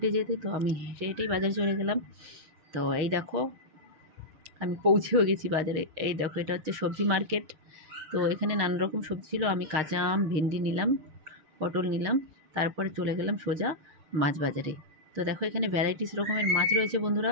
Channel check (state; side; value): late; left; 6.5 ms